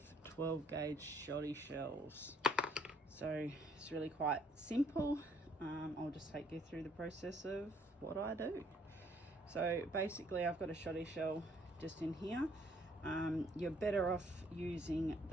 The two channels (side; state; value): both; normal; correlation 0.64